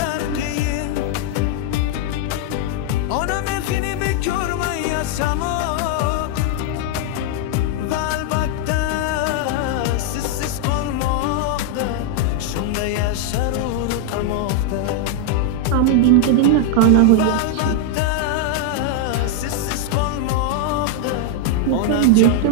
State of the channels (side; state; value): both; different; correlation 0.00